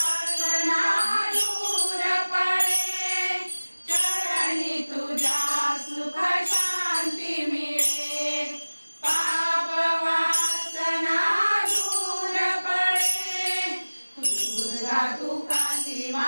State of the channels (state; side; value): inverted; both; correlation -1.00